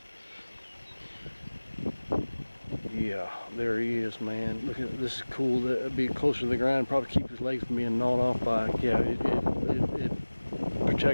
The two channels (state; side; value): inverted; both; correlation -1.00